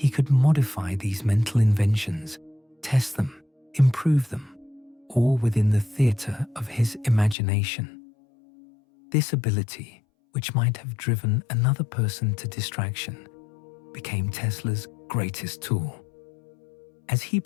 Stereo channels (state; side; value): drops out; right; at 7.4 s